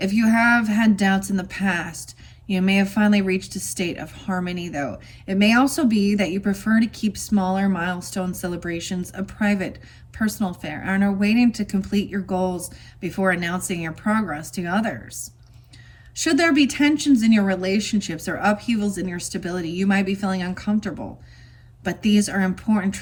you have had doubts in the past, you may have finally reached a state of harmony, though. It may also be that you prefer to keep smaller milestone celebrations a private, personal affair and are waiting to complete your goals before announcing your progress to others. Should there be tensions in your relationships or upheavals in your stability, you might be feeling uncomfortable. But these are important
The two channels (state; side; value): identical; both; correlation 1.00